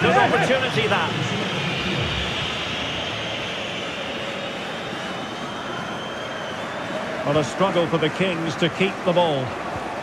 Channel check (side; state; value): both; identical; correlation 1.00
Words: Good opportunity, that. Well, a struggle for the Kings to keep the ball.